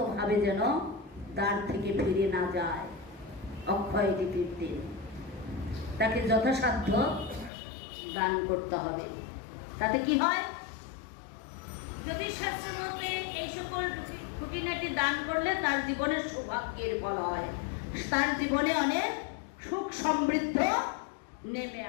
যেন দ্বার থেকে ফিরে না যায়। অক্ষয় তৃতীয়ার দিন তাকে যথাসাধ্য দান করতে হবে। তাতে কি হয়? জ্যোতিষশাস্ত্র মতে এই সকল খুঁটিনাটি দান করলে তার জীবনে সৌভাগ্যের ফল হয়, তার জীবনে অনেক সুখ সমৃদ্ধ নেমে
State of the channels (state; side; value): drops out; right; at 7.5 s